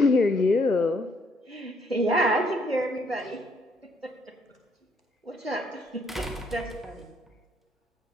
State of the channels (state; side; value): normal; both; correlation 0.68